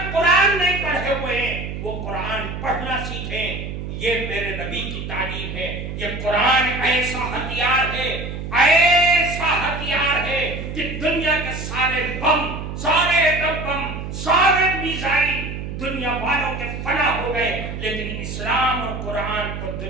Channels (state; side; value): noise; right; hum, 7 dB below the sound